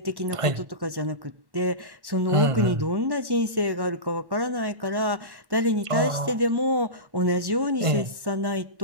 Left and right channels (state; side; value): late; left; 1.1 ms